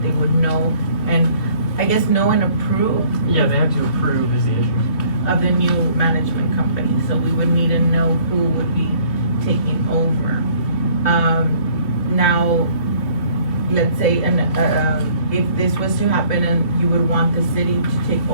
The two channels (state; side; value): late; right; 2.9 ms